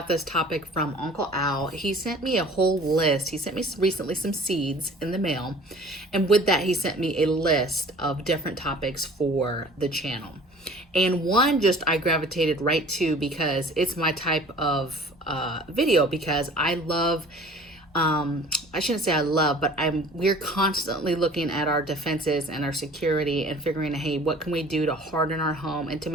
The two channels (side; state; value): both; normal; correlation 0.47